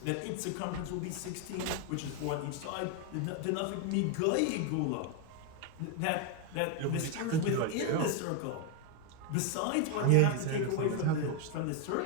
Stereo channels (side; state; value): both; different; correlation 0.01